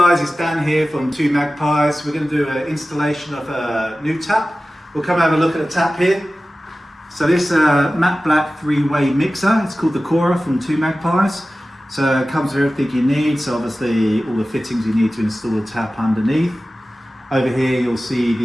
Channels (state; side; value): normal; both; correlation 0.96